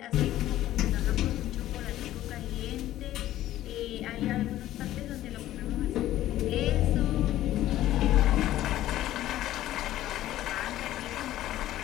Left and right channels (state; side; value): quieter; right; 13.9 dB